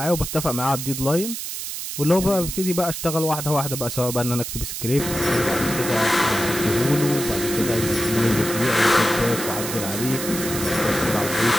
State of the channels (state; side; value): noise; right; hiss, 6 dB below the sound